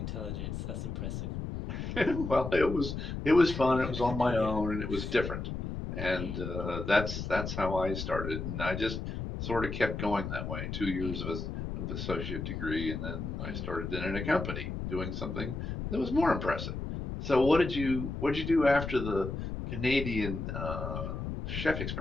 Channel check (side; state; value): left; noise; rumble, 5 dB below the sound